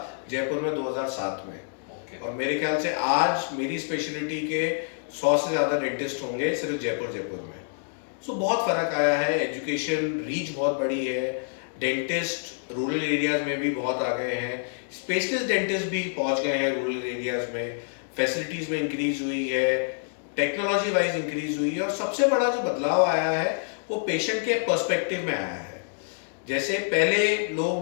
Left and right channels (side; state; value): right; silent; digital silence